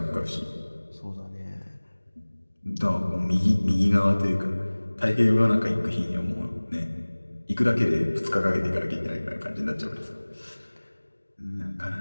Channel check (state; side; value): inverted; both; correlation -1.00